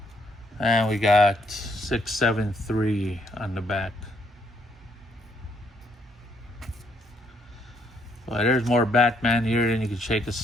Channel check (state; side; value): normal; both; correlation 0.71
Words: And we got 673 on the back. Well, there's more Batman here than you can shake a